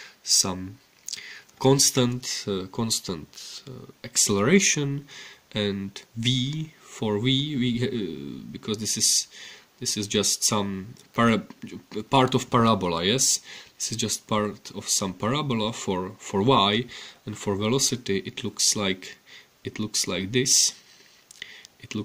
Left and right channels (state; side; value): identical; both; correlation 1.00